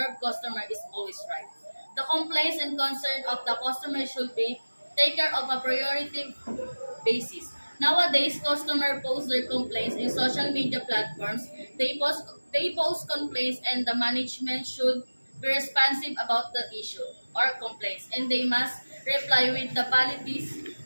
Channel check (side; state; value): both; inverted; correlation -1.00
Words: customer is always right. The complaints and concerns of the customer should be taken care of a priority basis. Nowadays, customers post their complaints in social media platforms. They post complaints and the management should be responsive about the issue or complaints and they must reply with the policies